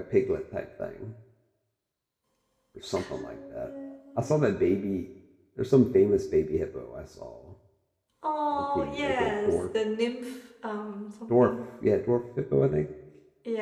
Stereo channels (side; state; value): both; identical; correlation 1.00